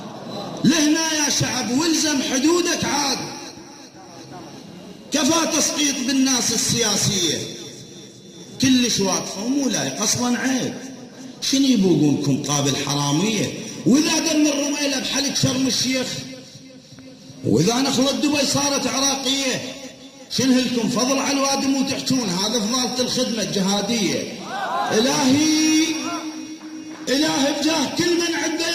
لهنا يا شعب، والزم حدودك عاد. كفى تسقيط بالناس السياسية، كلش واقفة ومو لايق اصلا، عيب. شنو يبوقونكم قابل حرامية؟ واذا دم الرميلة بحلق شرم الشيخ، واذا نخلة دبي صارت عراقية، شنو لكم فضل على الوادم وتحجون هذا فضالة الخدمة الجهادية؟ إلهي بجاه كل من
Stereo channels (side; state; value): both; identical; correlation 1.00